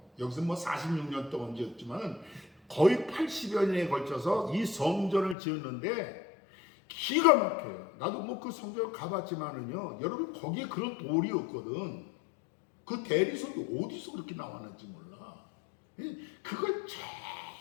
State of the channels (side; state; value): right; drops out; at 5.4 s